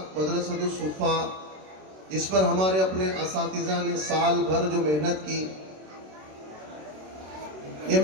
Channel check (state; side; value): late; left; 27 ms